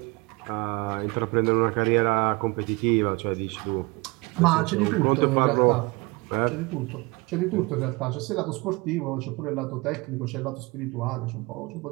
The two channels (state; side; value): quieter; left; 25.5 dB